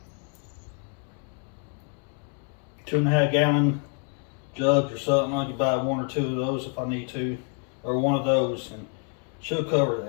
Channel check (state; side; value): quieter; right; 38.9 dB